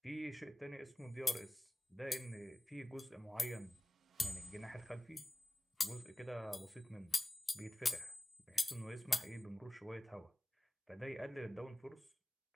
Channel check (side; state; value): both; normal; correlation 0.97